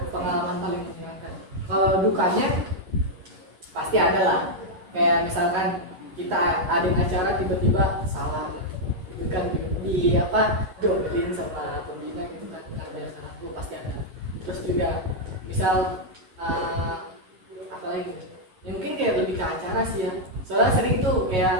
pengalaman paling menyenangkan. Kalau dukanya pasti ada lah, kayak misalkan kita adain acara tiba-tiba salah gitu kan, jodohin sama pembina gitu kan, karena salah itu pasti ada. Terus juga misal apa lagi ya, mungkin kayak lebih ke acara sih ya, soalnya sering tuh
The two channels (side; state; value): left; late; 11 ms